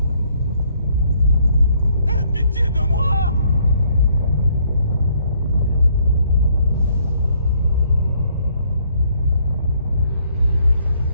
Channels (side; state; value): both; inverted; correlation -0.67